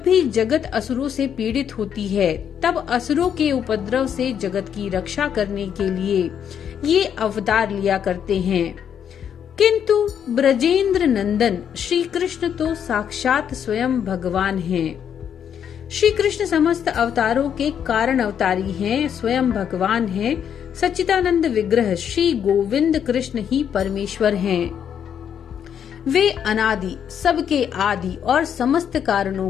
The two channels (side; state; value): right; quieter; 8.6 dB